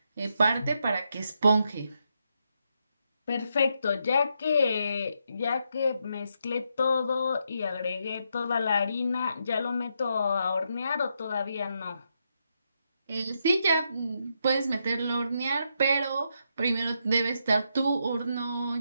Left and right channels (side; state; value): both; inverted; correlation -0.81